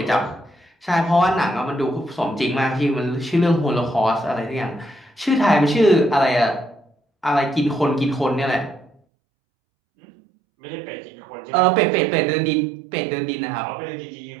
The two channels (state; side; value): drops out; left; at 9.0 s